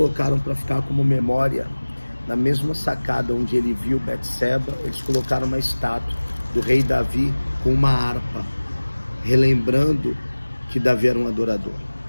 para ficar como memória, na mesma sacada onde ele viu Betseba, eles colocaram uma estátua do rei Davi com uma harpa, relembrando que Davi era um adorador.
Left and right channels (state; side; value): inverted; both; correlation -1.00